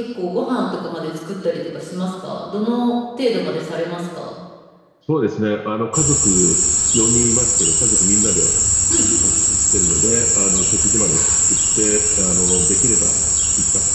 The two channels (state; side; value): identical; both; correlation 1.00